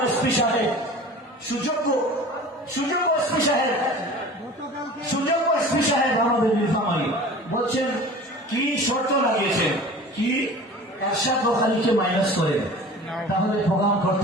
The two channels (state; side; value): normal; both; correlation 0.40